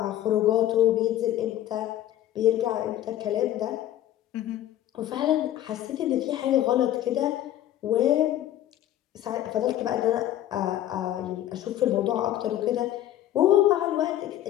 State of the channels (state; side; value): quieter; right; 12.6 dB